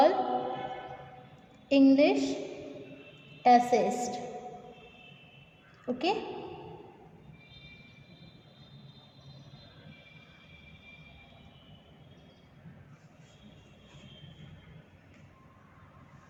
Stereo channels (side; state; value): both; identical; correlation 1.00